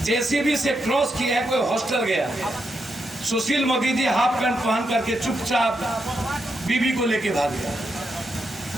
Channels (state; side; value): normal; both; correlation 0.83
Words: जेसीबी से क्रॉस किया है, कोई हॉस्टल गया। सुशील मोदी जी हाफ पैंट पहन करके चुपचाप बीबी को लेके भाग गया।